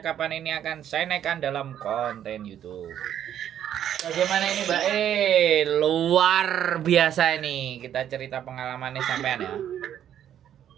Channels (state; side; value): quieter; left; 10.3 dB